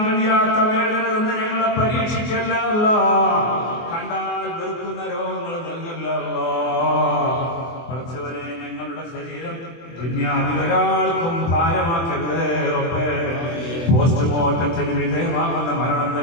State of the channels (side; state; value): right; late; 24 ms